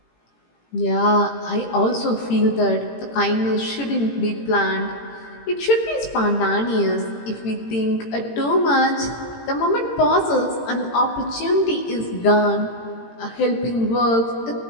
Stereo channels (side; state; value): right; late; 18 ms